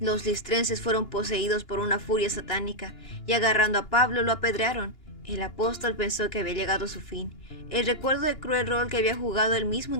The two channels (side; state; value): right; late; 2.9 ms